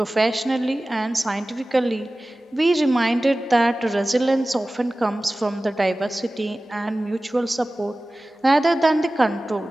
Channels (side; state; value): both; normal; correlation 0.97